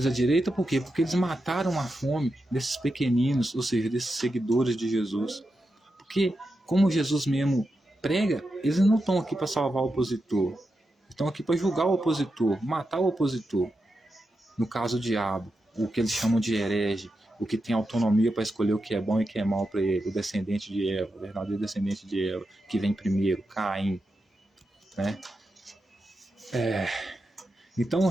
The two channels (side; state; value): both; normal; correlation 0.88